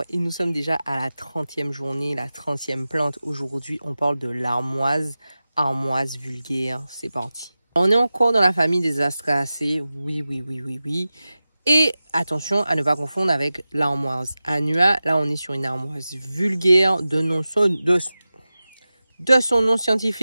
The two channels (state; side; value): inverted; both; correlation -0.95